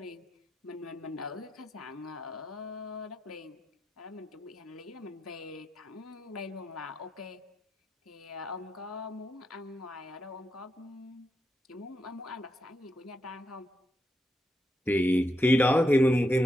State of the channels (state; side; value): normal; both; correlation 0.83